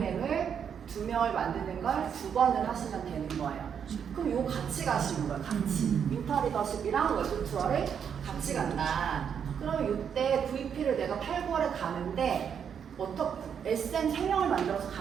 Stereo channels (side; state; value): left; quieter; 7.7 dB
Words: 2명을 만드는 걸 2번을 하시면 되는 거예요. 그럼 요 같이 가시는 거예요. 같이. 윈터 리더십이랑 월드 투어를 같이 간다. 그러면 이때 VP를 내가 8, 9월에 가는데 SM 3명을 만들어서